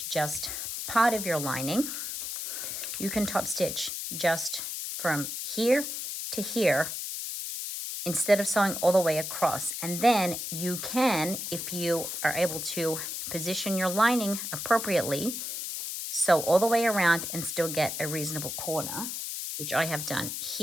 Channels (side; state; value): left; noise; hiss, 5 dB below the sound